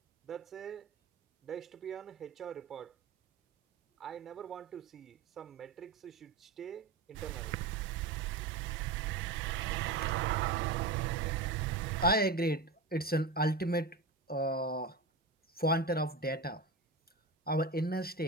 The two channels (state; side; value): quieter; left; 3.5 dB